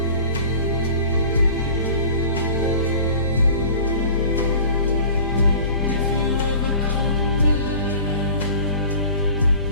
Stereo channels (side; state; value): both; inverted; correlation -0.43